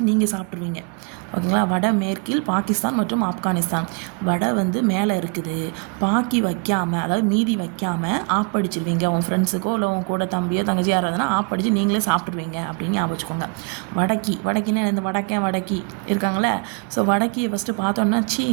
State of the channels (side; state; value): left; quieter; 32.1 dB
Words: நீங்கள் சாப்பிட்ருவீங்க. ஓகேங்களா? வட மேற்கில் பாகிஸ்தான் மற்றும் ஆப்கானிஸ்தான். வடை வந்து மேலே இருக்குது, பாக்கி வைக்காமல், அதாவது மீதி வைக்காமல் ஆப்படிச்சிருவீங்க. உன் ஃப்ரெண்ட்ஸுக்கோ இல்லை உன் கூட தம்பியோ தங்கச்சி யாராவதுனா ஆப்படிச்சு நீங்களே சாப்பிட்ருவீங்க அப்படின்னு ஞாபகம் வச்சுக்கோங்க. வடக்கின்னா இந்த வடக்கி இருக்காங்களே. ஸோ வடக்கியை ஃபஸ்ட்டு பார்த்தோன்னா சீ